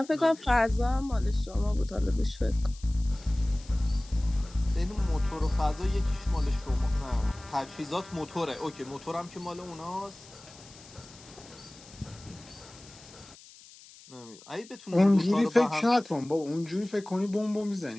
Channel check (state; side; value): noise; left; hiss, 21 dB below the sound